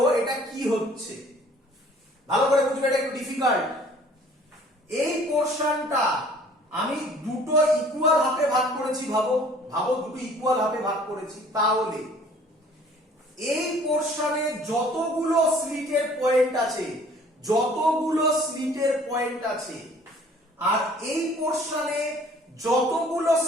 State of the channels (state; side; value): normal; both; correlation 0.54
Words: এটা কি হচ্ছে ভালো করে বুঝবে, এটা একটু ডিফিকাল্ট। এই পোরশনটা আমি দুটো ইকুয়াল হাফে ভাগ করেছি, ভাবো দুটো ইকুয়াল হাফে ভাগ করেছি, তাহলে এই পোরশনে যতগুলো স্লিটের পয়েন্ট আছে আর এই পোরশনে যতগুলো